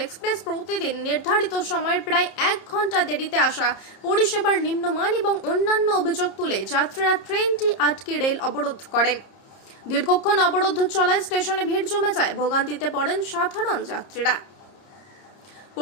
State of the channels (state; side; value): late; right; 30 ms